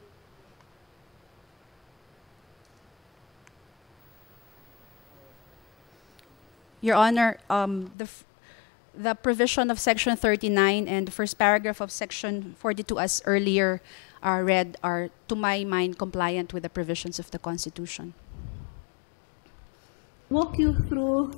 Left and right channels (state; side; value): drops out; right; at 8.0 s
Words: Your Honor, the provision of Section 39 and the first paragraph of Section 42, as earlier read, are, to my mind, compliant with the provisions of the Constitution. Walk you through